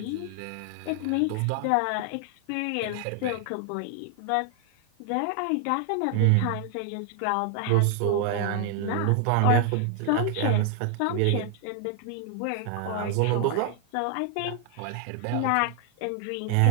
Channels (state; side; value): different; both; correlation 0.00